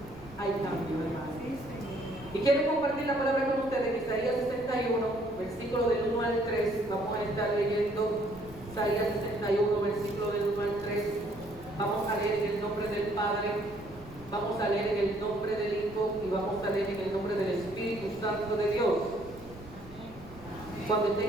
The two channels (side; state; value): right; noise; rumble, 19 dB below the sound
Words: hay cambio, hermano. Y quiero compartir la palabra con ustedes en Isaías 61, versículo del 1 al 3. Vamos a estar leyendo Isaías 61, versículo del 1 al 3. Vamos a leer en el nombre del Padre, vamos a leer en el nombre del Hijo y vamos a leer en el nombre del Espíritu Santo de Dios. Cuando